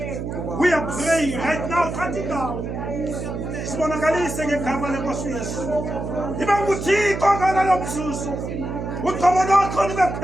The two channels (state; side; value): noise; right; hum, 5 dB below the sound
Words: We are praying right now, cutting down. Sibonakalise ngegama lenkosi Yesu. Iba nguThixo ngalalo mzuzu. Uqobo lwakho libe